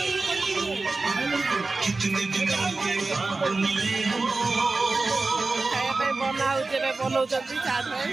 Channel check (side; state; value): left; quieter; 3.6 dB